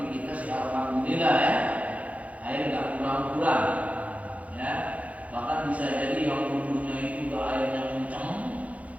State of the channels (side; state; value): left; late; 0.067 ms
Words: kita sih alhamdulillah ya, air nggak kurang-kurang, ya. Bahkan bisa jadi yang wudunya itu nggak airnya kencang,